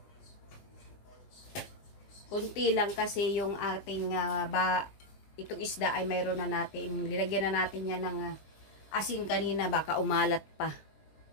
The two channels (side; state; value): right; late; 20 ms